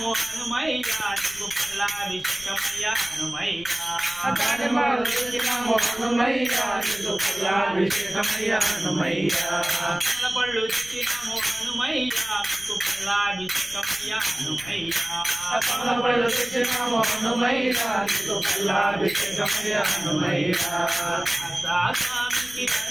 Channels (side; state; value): left; noise; rumble, 20 dB below the sound